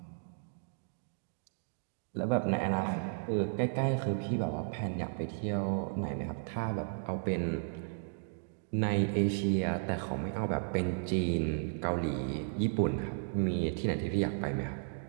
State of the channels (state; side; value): silent; left; digital silence